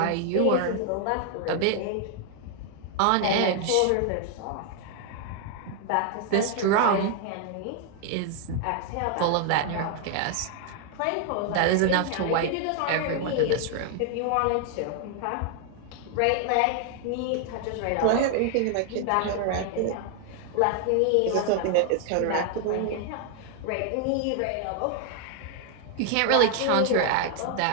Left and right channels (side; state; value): both; different; correlation 0.00